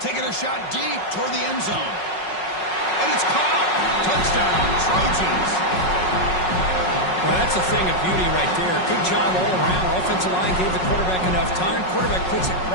Taking a shot deep toward the end zone. And it's caught. Touchdown, Trojans. Well, that's a thing of beauty right there. Good job all around. Offensive line gave the quarterback enough time. Quarterback puts it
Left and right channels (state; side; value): late; right; 5.4 ms